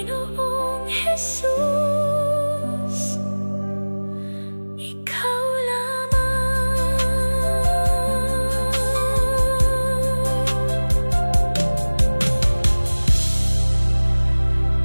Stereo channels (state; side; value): inverted; both; correlation -1.00